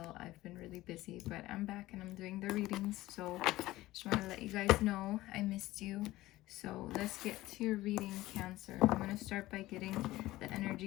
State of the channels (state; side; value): quieter; right; 17.2 dB